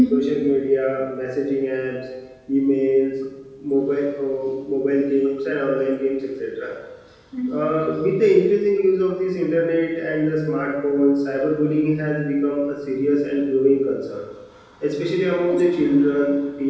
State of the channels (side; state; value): both; identical; correlation 1.00